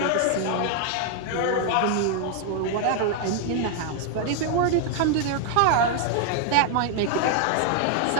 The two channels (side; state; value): both; different; correlation 0.00